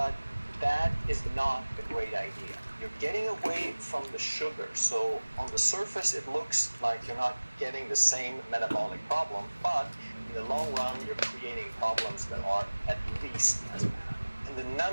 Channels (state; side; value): inverted; both; correlation -1.00